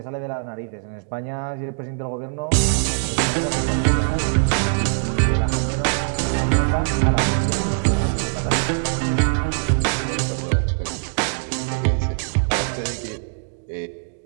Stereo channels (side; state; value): left; silent; digital silence